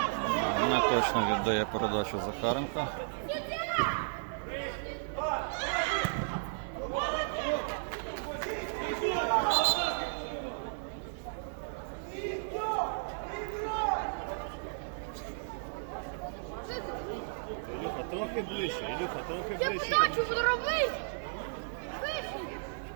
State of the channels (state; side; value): silent; left; digital silence